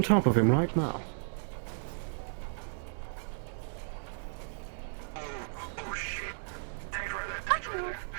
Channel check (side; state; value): left; silent; 55 dB below the other